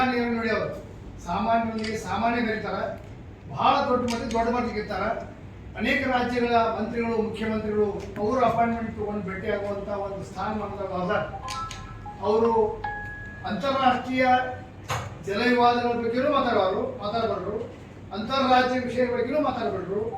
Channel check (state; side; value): identical; both; correlation 1.00